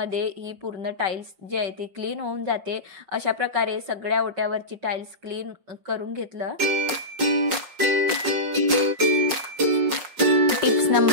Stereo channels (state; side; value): late; left; 5.5 ms